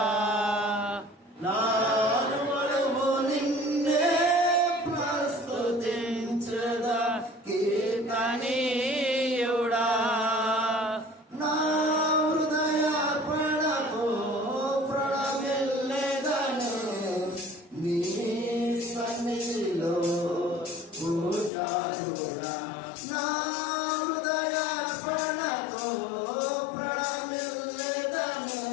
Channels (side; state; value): right; drops out; at 21.5 s